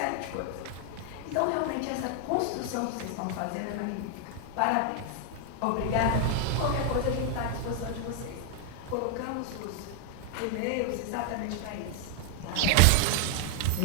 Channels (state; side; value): different; both; correlation 0.00